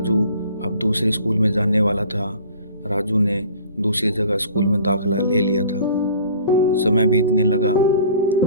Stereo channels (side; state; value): both; inverted; correlation -0.48